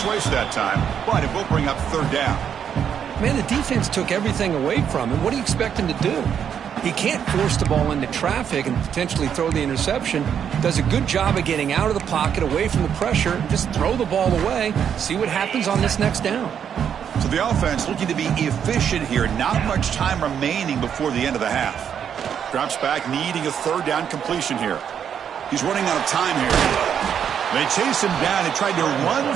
that time, but it will bring up 3rd down. Man, the defense took everything away from him. What do you expect him to do? He can't force the ball into traffic and potentially throw the interception. Does a good job of getting out of the pocket, away from the pressure, just throw the ball away, see what happens on this next down. So the offense looking to be efficient here. Not much time remaining before the end of the half. Drops back, needing a 3rd down completion here. He's running out of time here. They chase him down. They tried to run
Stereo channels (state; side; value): quieter; left; 8.3 dB